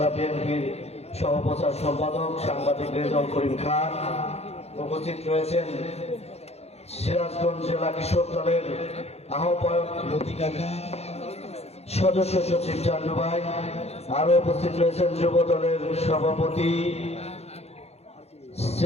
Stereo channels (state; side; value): late; right; 0.31 ms